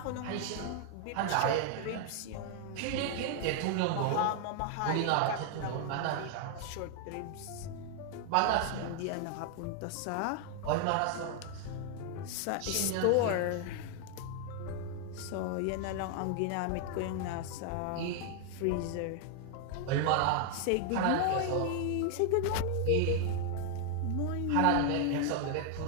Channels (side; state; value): both; different; correlation 0.00